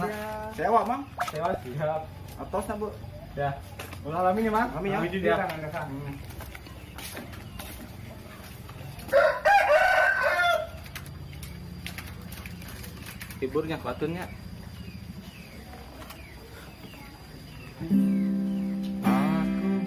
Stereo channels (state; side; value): identical; both; correlation 1.00